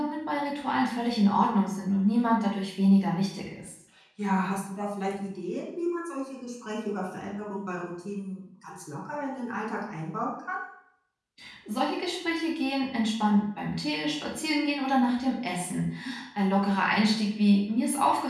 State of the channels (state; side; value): identical; both; correlation 1.00